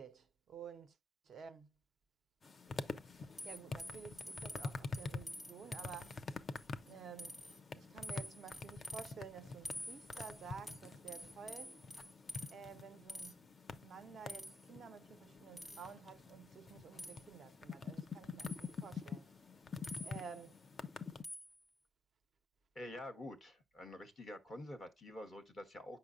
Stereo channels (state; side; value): normal; both; correlation 0.80